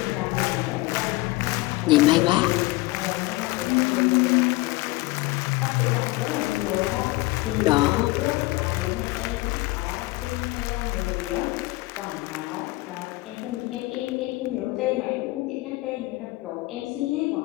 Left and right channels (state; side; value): quieter; right; 21.0 dB